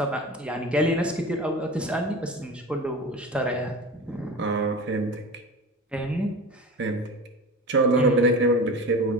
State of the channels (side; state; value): both; normal; correlation 0.32